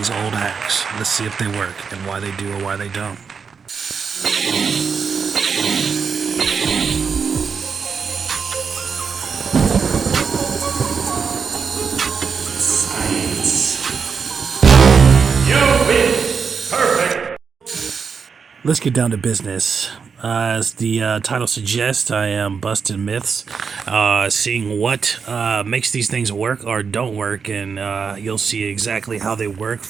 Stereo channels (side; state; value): left; quieter; 5.9 dB